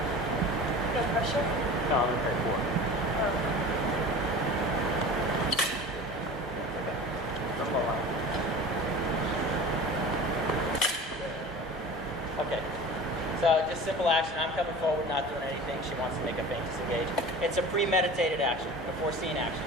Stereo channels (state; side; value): normal; both; correlation 0.37